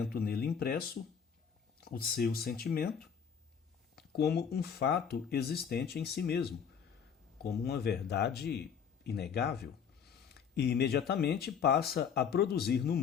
nele impresso, o seu sentimento, como um fato existente em si mesmo, como uma verdade inegável, e imediatamente passa a produzir no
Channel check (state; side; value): quieter; right; 7.2 dB